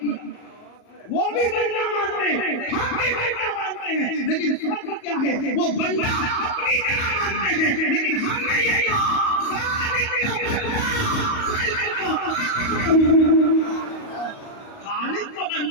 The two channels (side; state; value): right; late; 38 ms